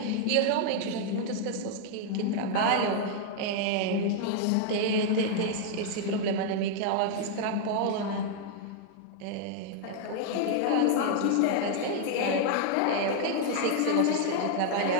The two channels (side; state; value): both; different; correlation 0.00